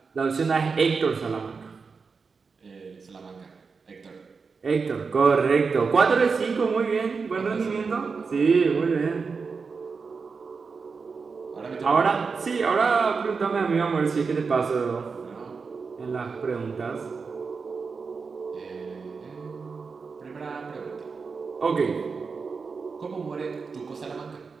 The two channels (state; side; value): quieter; left; 5.0 dB